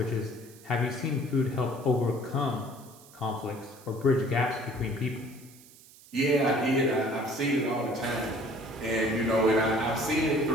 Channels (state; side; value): noise; right; hiss, 23 dB below the sound